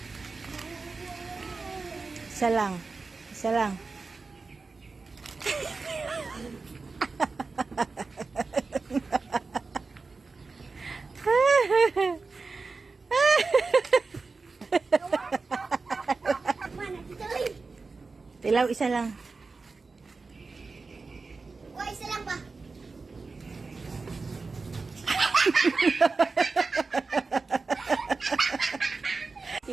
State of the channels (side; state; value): left; quieter; 4.1 dB